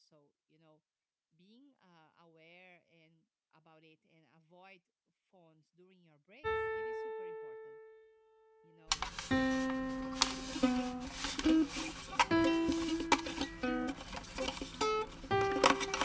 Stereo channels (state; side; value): identical; both; correlation 1.00